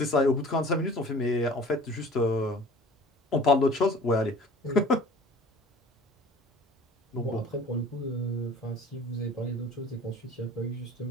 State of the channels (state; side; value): normal; both; correlation 0.46